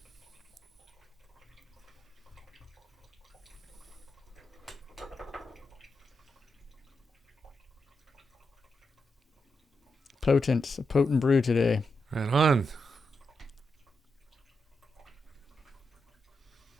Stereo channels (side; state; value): both; normal; correlation 0.85